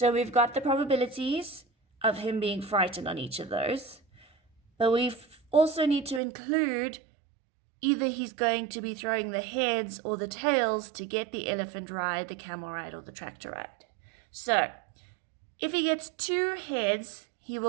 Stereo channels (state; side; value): drops out; left; at 6.2 s